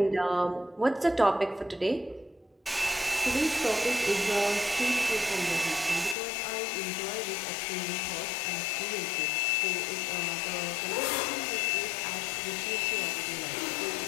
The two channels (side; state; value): right; drops out; at 6.2 s